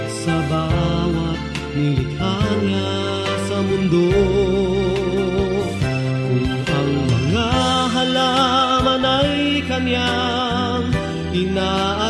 sa bawat nilikha niya sa mundo. Kung ang mga halaman ay kanyang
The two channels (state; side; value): identical; both; correlation 1.00